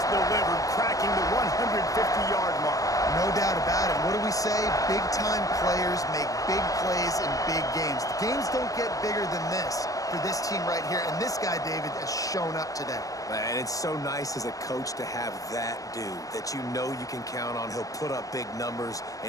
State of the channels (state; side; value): late; right; 0.17 ms